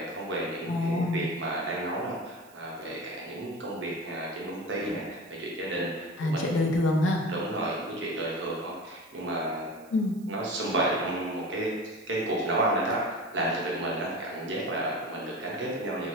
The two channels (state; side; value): noise; right; hiss, 26 dB below the sound